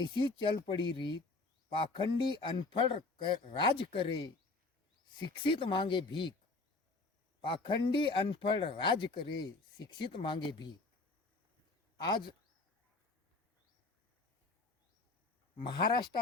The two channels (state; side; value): quieter; right; 3.5 dB